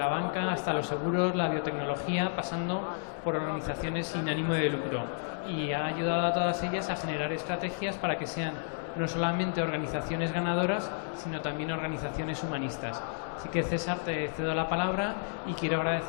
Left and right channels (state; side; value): silent; right; 57 dB below the other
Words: banca hasta los seguros, la biotecnología, pasando por organizaciones sin ánimo de lucro, y ha ayudado a todas ellas a generar estrategias para que sean no solamente organizaciones ganadoras, sino también organizaciones humanistas. Así que, César, te cedo la palabra y quiero